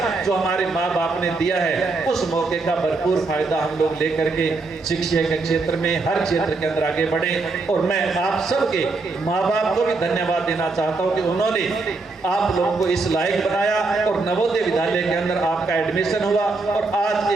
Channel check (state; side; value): quieter; left; 3.7 dB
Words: जो हमारे माँ बाप ने दिया है, उस मौके का भरपूर फायदा हम लोग लेकर के शिक्षा के क्षेत्र में हर क्षेत्र के अंदर आगे बढ़े। और मैं आप सबके माँ बाप को भी धन्यवाद देना चाहता हूँ कि उन्होंने आप लोगों को इस लायक बनाया और नवोदय विद्यालय के अंदर आपका एडमिशन हुआ और आज